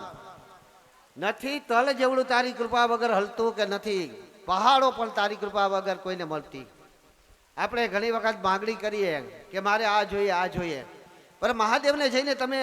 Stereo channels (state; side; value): identical; both; correlation 1.00